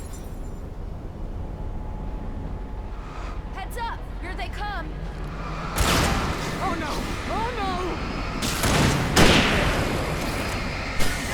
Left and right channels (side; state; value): both; identical; correlation 1.00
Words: Heads up! Here they come. Oh no! Oh no!